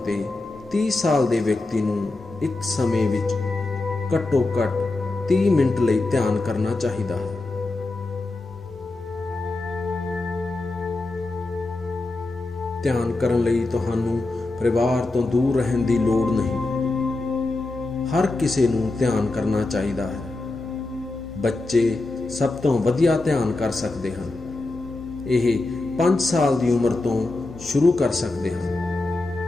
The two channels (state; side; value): quieter; right; 3.1 dB